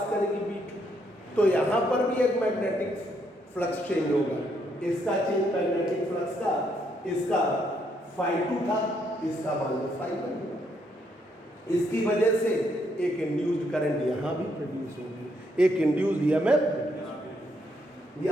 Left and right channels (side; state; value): both; normal; correlation 0.74